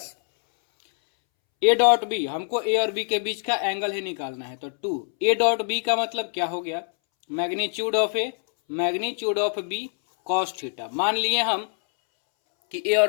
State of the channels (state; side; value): silent; right; 62 dB below the other